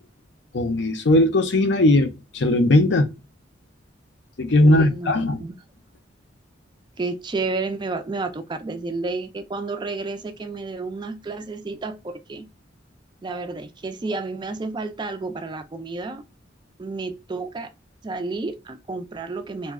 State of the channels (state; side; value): normal; both; correlation 0.53